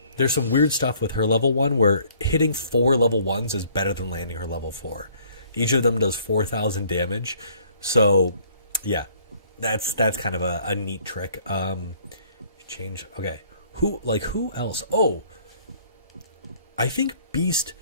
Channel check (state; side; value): inverted; both; correlation -0.60